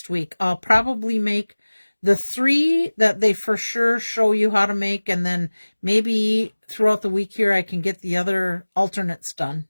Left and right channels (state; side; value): inverted; both; correlation -1.00